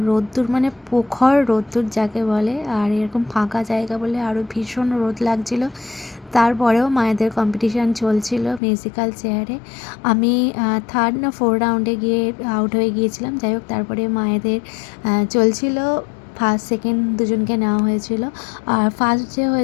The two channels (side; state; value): right; drops out; at 8.6 s